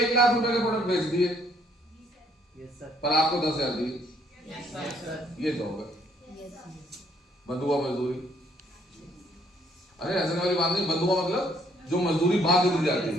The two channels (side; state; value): both; normal; correlation 0.66